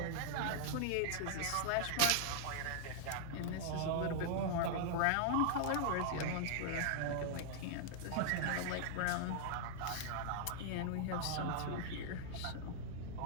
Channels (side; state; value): both; different; correlation -0.01